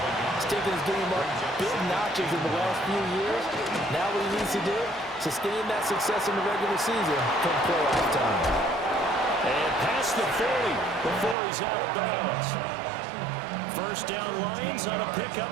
He's taken his game up big notches in the last few years. Now what he needs to do, sustain that success in the regular season come playoff time. And past the 40 before he's out of bounds. First down Lions on a pickup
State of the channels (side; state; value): left; drops out; at 11.4 s